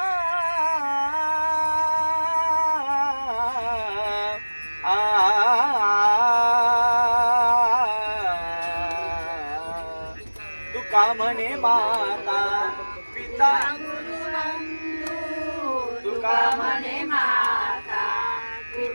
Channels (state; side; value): inverted; both; correlation -1.00